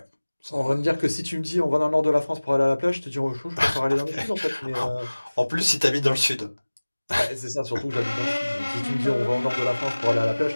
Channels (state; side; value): inverted; both; correlation -1.00